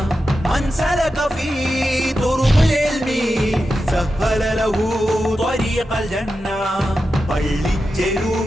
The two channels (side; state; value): both; normal; correlation 0.90